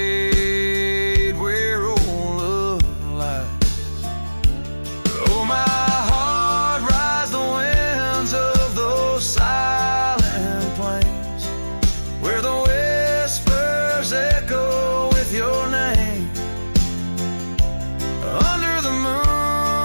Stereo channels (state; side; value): inverted; both; correlation -1.00